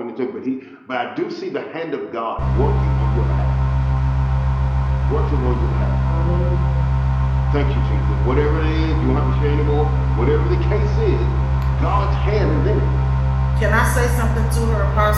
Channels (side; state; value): both; identical; correlation 1.00